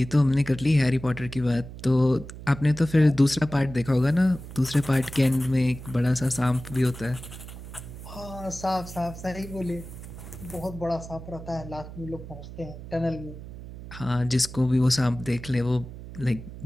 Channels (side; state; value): right; noise; hum, 13 dB below the sound